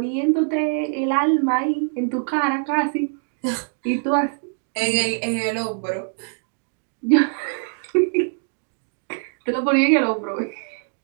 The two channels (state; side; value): silent; left; 60 dB below the other